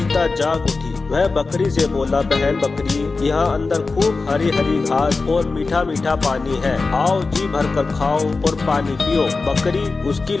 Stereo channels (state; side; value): quieter; right; 4.0 dB